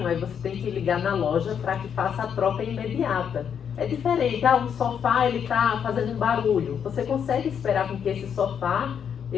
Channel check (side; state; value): right; quieter; 7.8 dB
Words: Aí você tem que ligar na loja para que faça a troca imediata. É diferente. Um sofá, ele está fazendo um barulho. Você consegue esperar com que esse sofá,